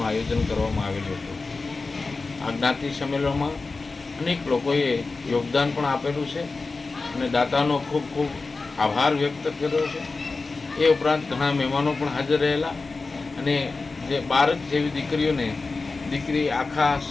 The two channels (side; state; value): right; quieter; 3.9 dB